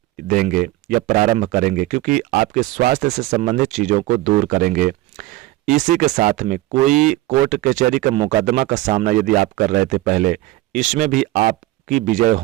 देंगे या प्रारंभ करेंगे, क्योंकि आपके स्वास्थ्य से संबंधित चीजों को दूर करेंगे। इसी के साथ में कोई कोर्ट कचहरी का मुकदमा का सामना यदि आप कर रहे थे पहले, इसमें भी आपकी विजय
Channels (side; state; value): left; quieter; 17.5 dB